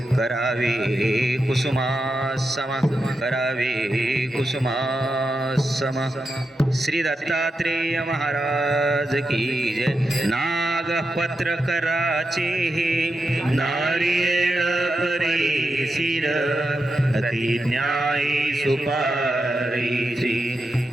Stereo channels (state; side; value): normal; both; correlation 0.87